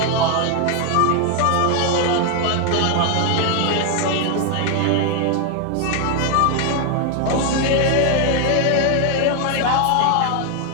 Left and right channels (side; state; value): both; different; correlation 0.01